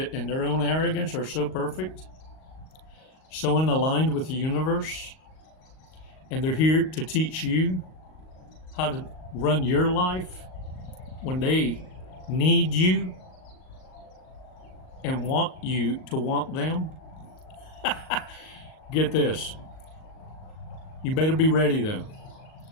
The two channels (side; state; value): right; late; 38 ms